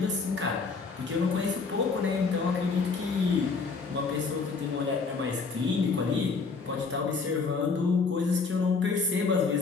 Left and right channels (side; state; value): right; quieter; 4.7 dB